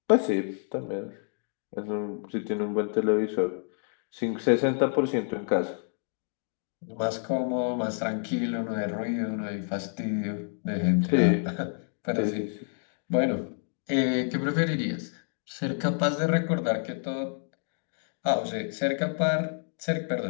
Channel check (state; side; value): silent; right; 59 dB below the other